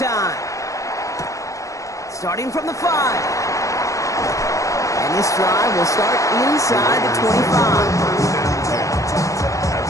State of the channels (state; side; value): late; right; 0.16 ms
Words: Starting from the 5. And this drive will start inside the 25. At